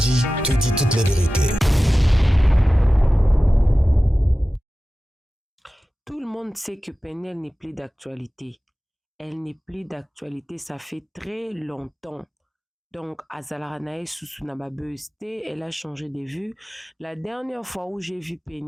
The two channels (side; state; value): both; normal; correlation 0.95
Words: te dit toute la vérité. Tout le monde sait que Péniel n'est plus d'actualité. Elle n'est plus d'actualité, ça fait très longtemps. Donc, Azalaranae Susunababeuste, elle a changé de vue. La dernière fois où j'ai vu